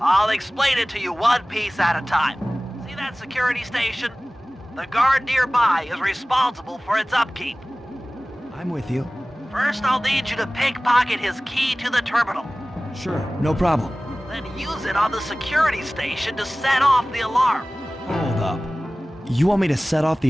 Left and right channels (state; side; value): normal; both; correlation 0.98